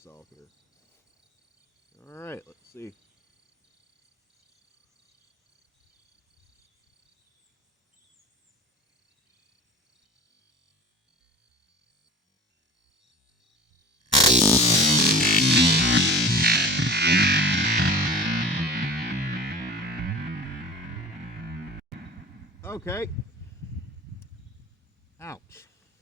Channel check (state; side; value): normal; both; correlation 0.39